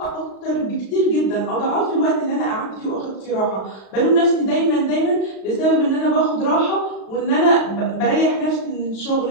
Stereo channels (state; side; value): late; right; 36 ms